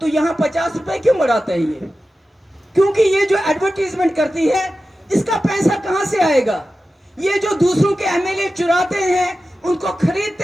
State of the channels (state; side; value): normal; both; correlation 0.93